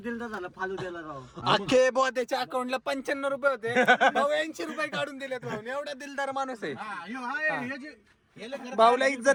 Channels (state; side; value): identical; both; correlation 1.00